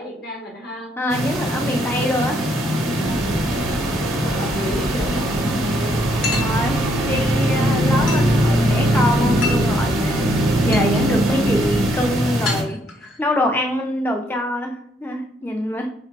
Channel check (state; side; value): normal; both; correlation 0.71